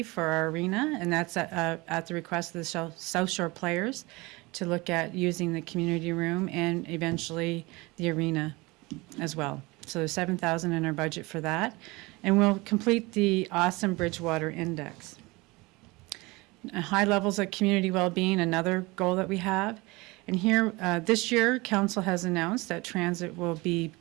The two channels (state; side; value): quieter; left; 23.6 dB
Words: for our arena, and that's at the request of the South Shore players to look at using the community room and eventually the arena as well. So there's $7,000 in our budget for that. And we'll complete the Awesome Bridgewater Index. High levels of community well-being, another goal that we have. And here, this year, council has announced that transit will